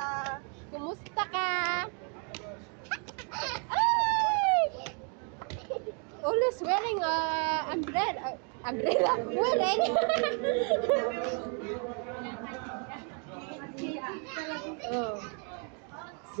Kumusta ka? Ay! Always wearing umbrella. Umbrella? Wearing? oh. So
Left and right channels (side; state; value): left; quieter; 38.8 dB